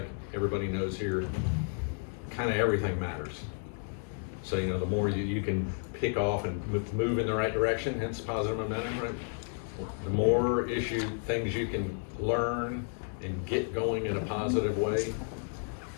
everybody knows here, kind of everything matters. So the more you can pick off and move in the right direction, hence positive momentum, right? The more things you can learn and get going in a positive way.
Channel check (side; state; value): right; silent; 57 dB below the other